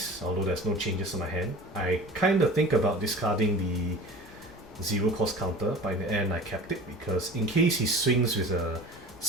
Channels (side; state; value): both; normal; correlation 0.39